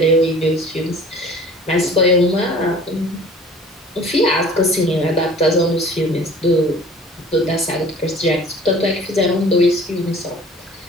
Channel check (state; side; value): normal; both; correlation 0.47